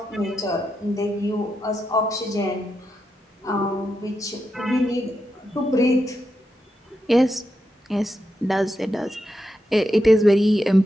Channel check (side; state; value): both; normal; correlation 0.86